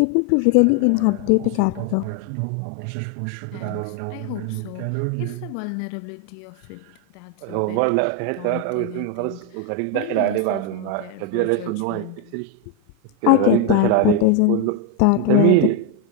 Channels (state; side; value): different; both; correlation 0.01